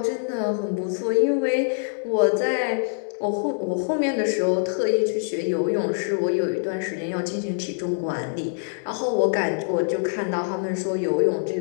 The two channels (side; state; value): right; silent; digital silence